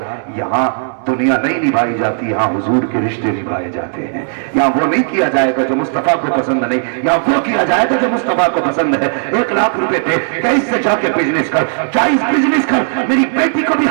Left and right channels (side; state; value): left; silent; 70 dB below the other